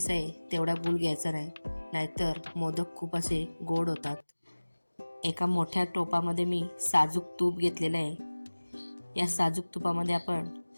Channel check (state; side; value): inverted; both; correlation -1.00